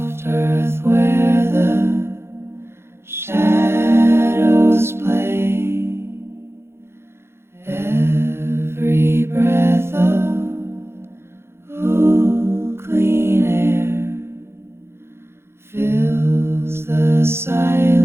earth where the shadows play, every breath of cool, clean air fills the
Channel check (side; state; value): left; late; 0.12 ms